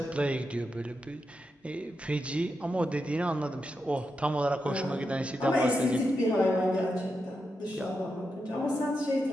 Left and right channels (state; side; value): normal; both; correlation 0.86